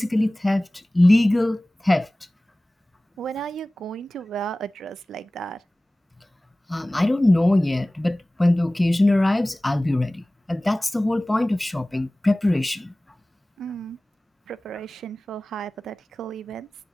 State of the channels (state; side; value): normal; both; correlation 0.98